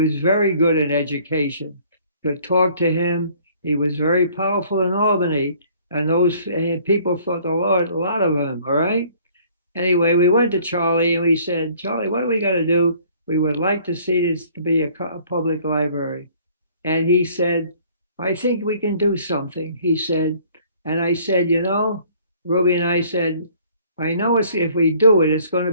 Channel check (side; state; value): both; inverted; correlation -0.57